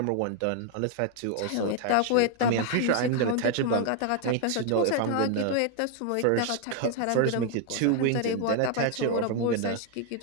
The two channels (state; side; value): different; both; correlation 0.00